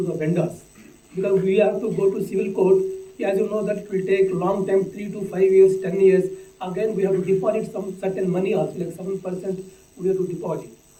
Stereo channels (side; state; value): both; identical; correlation 1.00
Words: the vendors, because we have to go to civil court. As you know, that it will take long time, 3 to 5 years, 10 years. Again, we have to deposit some certain money also, like 7% we have to deposit.